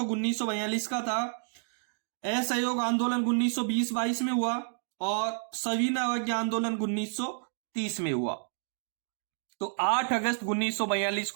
1942 का था, असहयोग आंदोलन 1920-22 में हुआ और सविनय अवज्ञा आंदोलन 1930 में हुआ। तो 8 अगस्त 1942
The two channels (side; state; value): left; silent; digital silence